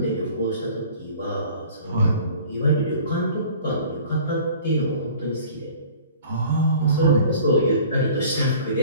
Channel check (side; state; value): both; inverted; correlation -0.48